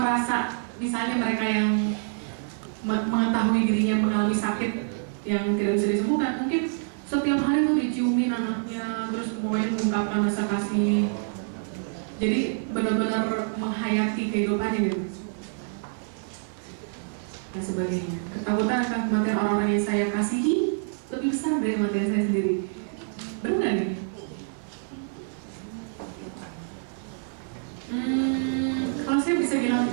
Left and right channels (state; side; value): silent; left; digital silence